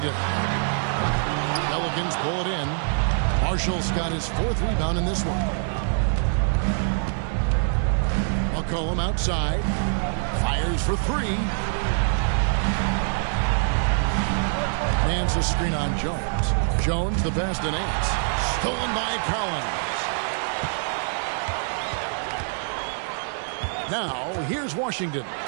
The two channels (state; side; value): silent; left; digital silence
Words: Pelicans pull it in. Marshall's got his 4th rebound in this one. McCollum outside. Fires for 3. Nance a screen on Jones. Jones the pass to Nance. Stolen by Collins. Now, here's Washington.